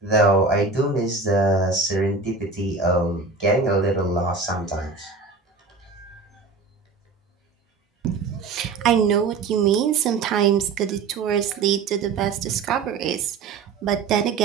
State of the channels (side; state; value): left; quieter; 4.5 dB